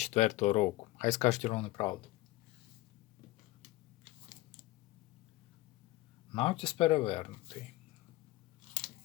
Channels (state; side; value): quieter; right; 18.8 dB